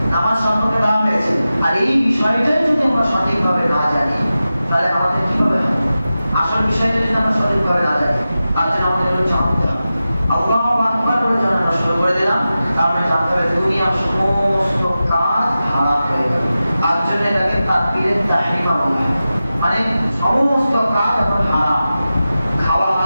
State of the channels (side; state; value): both; inverted; correlation -0.94